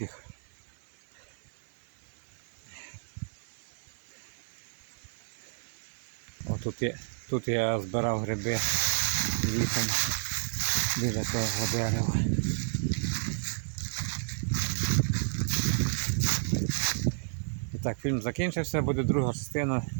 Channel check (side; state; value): left; silent; 57 dB below the other